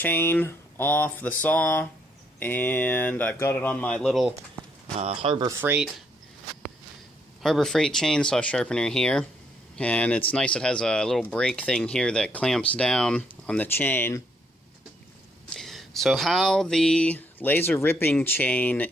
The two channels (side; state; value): both; normal; correlation 0.72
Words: off the saw, and I've got it on my little Harbor Freight chainsaw sharpener here. And it's nice, it has a little brake thing here that clamps down on the chain. So how the laser ripping chain